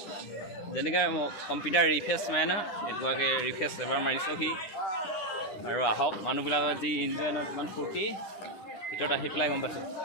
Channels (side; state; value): right; late; 9.9 ms